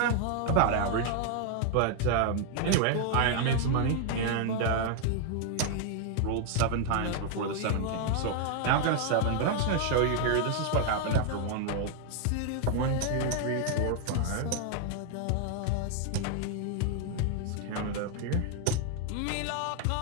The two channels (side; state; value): both; different; correlation 0.00